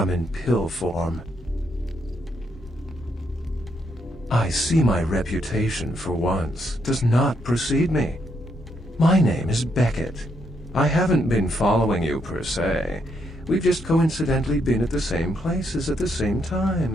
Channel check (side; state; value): both; normal; correlation 0.76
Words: in pill form. I see my reputation, for once, does not precede me. My name is Beckett. I haven't been following you per se. We've just coincidentally been at the same places at the same